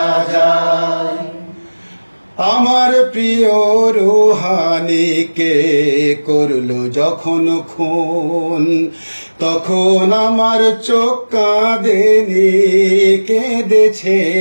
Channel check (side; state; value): both; inverted; correlation -1.00